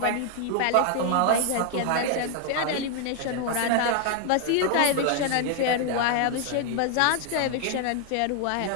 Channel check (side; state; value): both; different; correlation 0.00